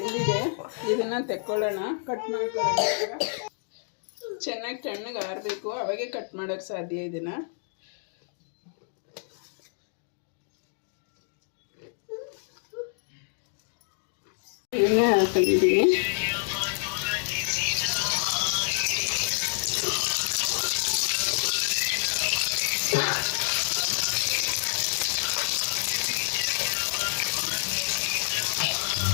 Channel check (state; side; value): silent; right; digital silence